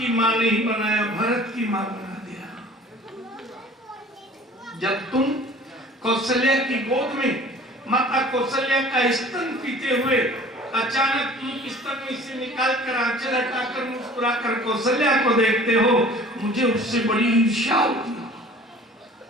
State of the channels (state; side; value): normal; both; correlation 0.47